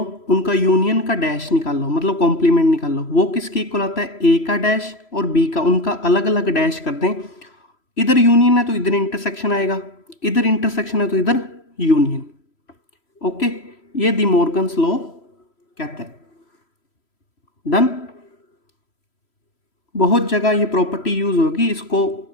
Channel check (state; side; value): late; right; 3.0 ms